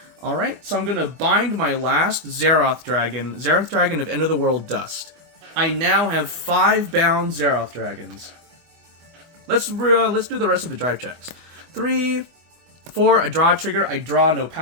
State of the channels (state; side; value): late; left; 24 ms